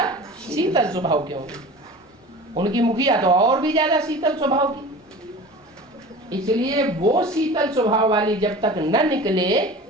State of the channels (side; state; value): both; normal; correlation 0.38